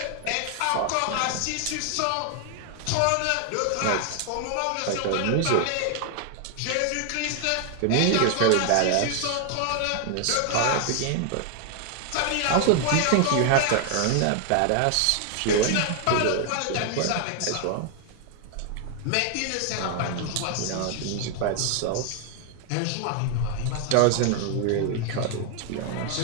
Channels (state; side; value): different; both; correlation 0.00